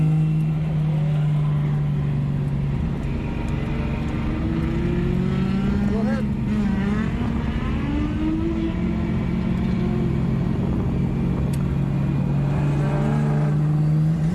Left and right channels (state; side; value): identical; both; correlation 1.00